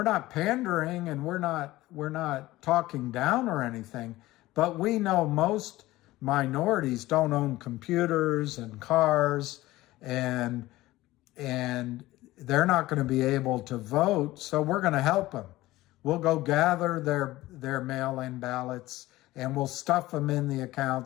not pandering and we're not talking down or anything, but we know most minorities don't own computers and cars, and they're not going to be able to vote. So we're going to help them. We'll go gather their mail-in ballots and we'll stuff them in the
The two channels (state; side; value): quieter; right; 17.5 dB